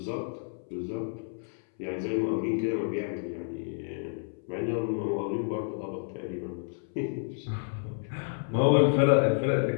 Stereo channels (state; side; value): silent; right; 58 dB below the other